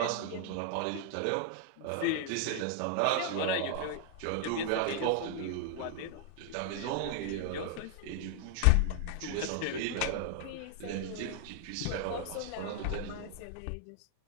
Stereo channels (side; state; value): both; different; correlation 0.00